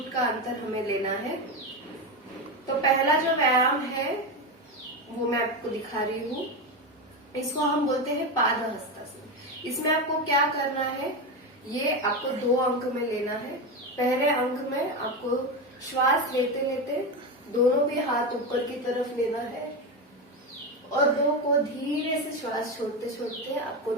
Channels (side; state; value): both; normal; correlation 0.16